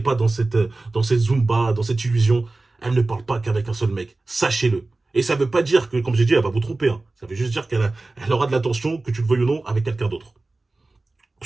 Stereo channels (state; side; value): quieter; left; 3.2 dB